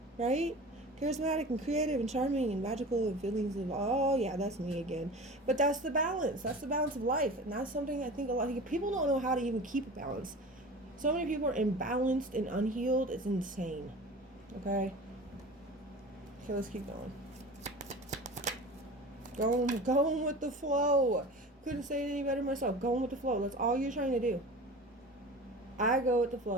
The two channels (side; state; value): both; normal; correlation 0.36